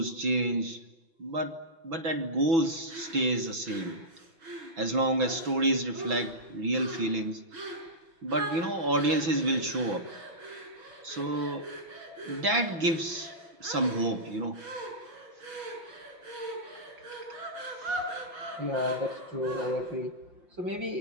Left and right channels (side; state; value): left; late; 6.0 ms